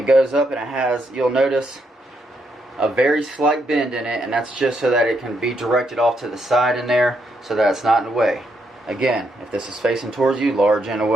goes up and it has, you'll notice, a very slight bend in it, and that's just so that it can be directed off to the side in there so that it's not in the way. Again, if this is facing towards you, large in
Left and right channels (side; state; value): both; normal; correlation 0.78